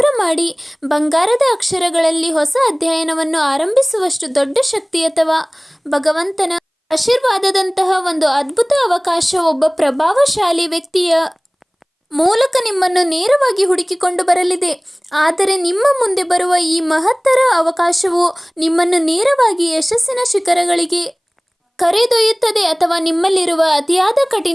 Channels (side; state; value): both; identical; correlation 1.00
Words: ಮಾಡಿ ಬಂಗಾರದ ಅಕ್ಷರಗಳಲ್ಲಿ ಹೊಸ ಅಧ್ಯಯನವನ್ನು ಆರಂಭಿಸುವಷ್ಟು ದೊಡ್ಡ ಶಕ್ತಿ ಅಥವಾ ಭಗವಂತನ ಆಶೀರ್ವಾದದಂತಹ ಒಂದು ಅದ್ಭುತ ಅವಕಾಶ ಒಬ್ಬ ಪ್ರಭಾವಶಾಲಿ ವ್ಯಕ್ತಿಯ ಮೂಲಕ ನಿಮ್ಮನ್ನು ನೇರವಾಗಿ ಹುಡುಕಿಕೊಂಡು ಬರಲಿದೆ. ಆದರೆ ನಿಮ್ಮ ಮುಂದೆ ಬರುವ ಈ ಮಹತ್ತರ ಅವಕಾಶವು ನಿಮ್ಮನ್ನು ನೇರವಾಗಿ ಯಶಸ್ಸಿನ ಶಿಖರಗಳಿಗೆ ಕರೆದೊಯ್ಯುತ್ತದೆ ಅಥವಾ ನಿಮ್ಮಲ್ಲಿರುವ ಅತಿಯಾದ